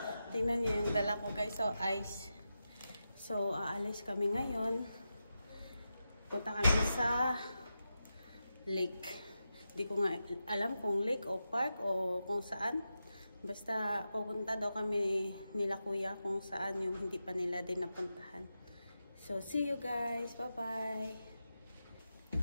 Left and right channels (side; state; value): both; inverted; correlation -0.90